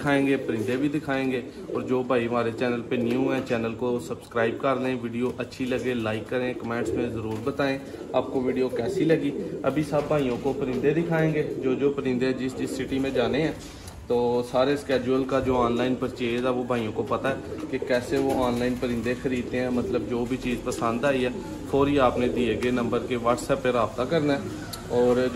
परिंदे भी दिखाएंगे। और जो भाई हमारे चैनल पे न्यू हैं, चैनल को सब्सक्राइब कर लें। वीडियो अच्छी लगे लाइक करें, कमेंट्स में ज़रूर बताएं आपको वीडियो कैसी लगी। अभी सब भाइयों को परिंदे दिखाएंगे, जो परिंदे जिस सिटी में जाने हैं। तो सारे स्केड्यूल का जो ऑनलाइन परचेज़ है वो भाइयों को पता है कि कैसे वो ऑनलाइन परिंदे ख़रीदते हैं। मतलब जो भी चीज़ पसंद आई है फौरी आपने दिए गए नंबर के व्हाट्सएप पर रब्ता करना है। और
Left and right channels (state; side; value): identical; both; correlation 1.00